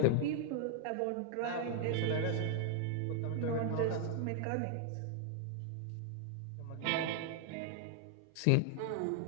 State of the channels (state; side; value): different; both; correlation 0.00